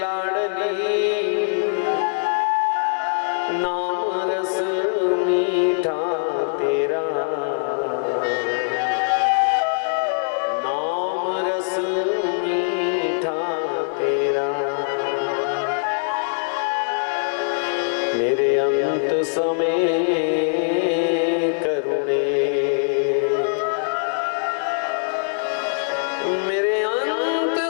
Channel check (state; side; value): silent; right; digital silence